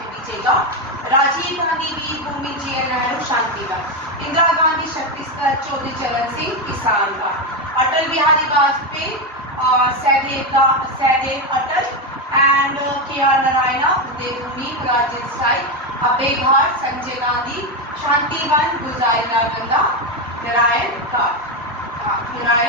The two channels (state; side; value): normal; both; correlation 0.10